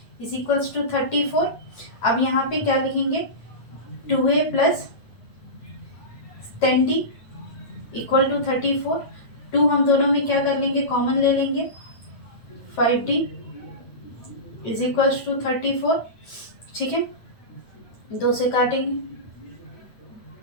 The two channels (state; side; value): late; right; 8.8 ms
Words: = 34। अब यहाँ पे क्या लिखेंगे, 2a plus 10d equal to 34। 2 हम दोनों में क्या कर लेंगे, कॉमन ले लेंगे, 5d इज इक्वल्स टू 34। ठीक है, 2 से काटेंगे,